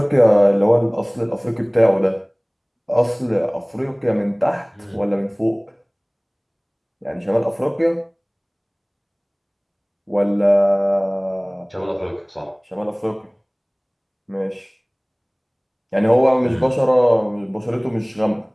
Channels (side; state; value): both; identical; correlation 1.00